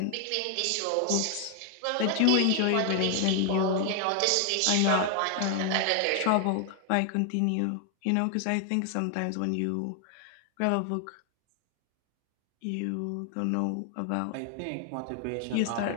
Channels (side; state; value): both; different; correlation 0.00